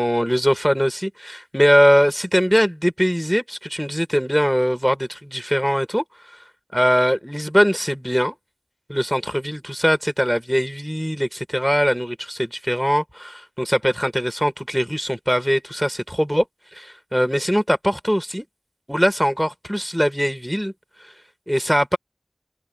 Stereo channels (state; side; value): identical; both; correlation 1.00